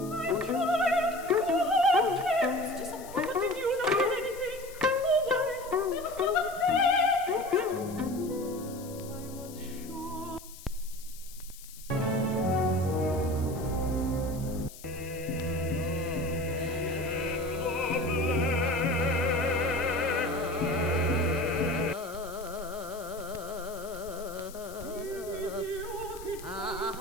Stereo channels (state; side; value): noise; left; hiss, 17 dB below the sound